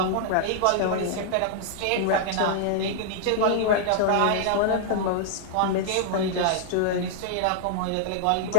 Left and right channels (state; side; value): different; both; correlation -0.01